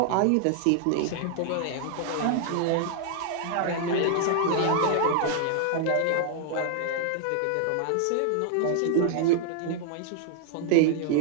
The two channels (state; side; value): different; both; correlation 0.00